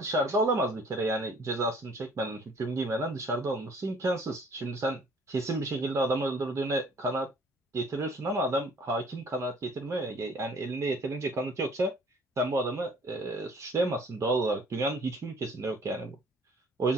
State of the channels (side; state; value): both; normal; correlation 0.55